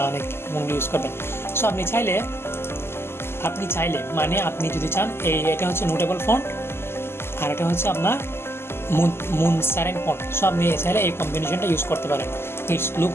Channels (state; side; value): late; right; 0.12 ms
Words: কোনগুলো ইউজ করবেন। সো আপনি চাইলে মানে আপনি যদি চান এটা হচ্ছে নোটেবল ফন্ট আর এটা হচ্ছে আপনার মুনসারেন ফন্ট। সো আপনি চাইলে এই কম্বিনেশনটা ইউজ করতে পারেন, ইটস লুক